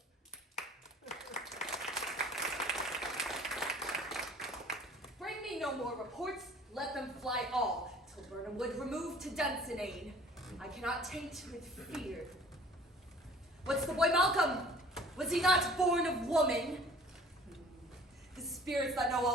Bring me no more reports, let them fly all, till Burnham Wood remove to Dunsinane. I cannot taint with fear. What's the boy Malcolm? Was he not born of woman? The spirits that know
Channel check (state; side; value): normal; both; correlation 0.50